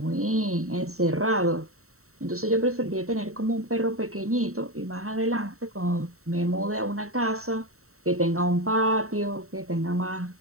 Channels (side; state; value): left; late; 0.64 ms